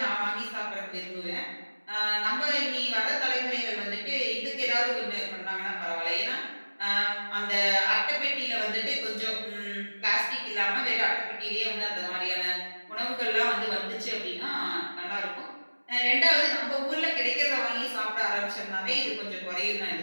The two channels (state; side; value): inverted; both; correlation -1.00